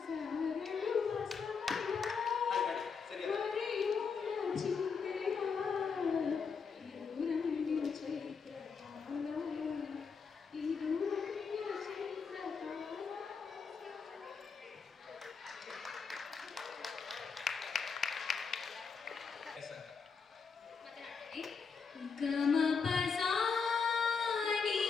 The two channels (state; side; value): quieter; right; 5.6 dB